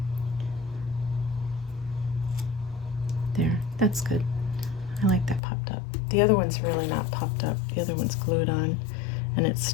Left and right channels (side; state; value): right; drops out; at 5.4 s